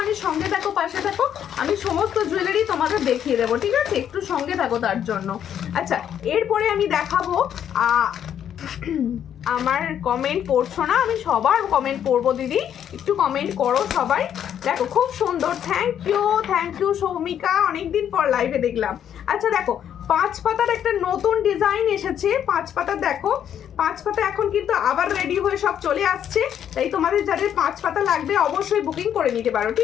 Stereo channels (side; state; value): right; quieter; 9.5 dB